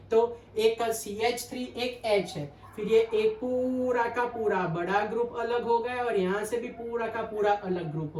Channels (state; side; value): identical; both; correlation 1.00